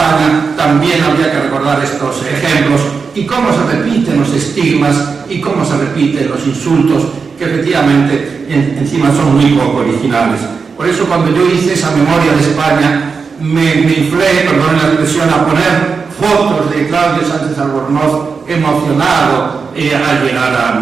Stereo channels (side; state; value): left; quieter; 5.2 dB